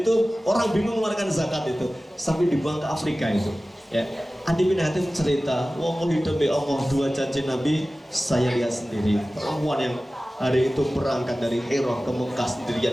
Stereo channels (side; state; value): both; normal; correlation 0.96